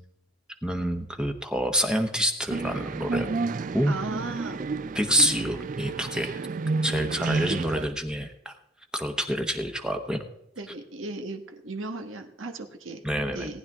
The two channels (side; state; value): both; normal; correlation 0.56